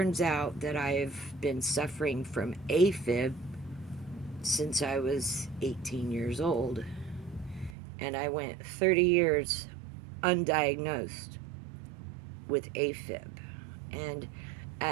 out that I've been suffering from AFib since I was 18 years old. And I went 30 years undiagnosed with AFib. And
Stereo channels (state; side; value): drops out; left; at 7.8 s